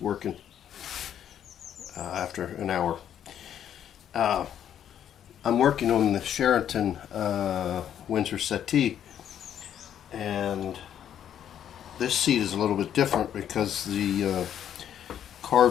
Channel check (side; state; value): right; quieter; 9.9 dB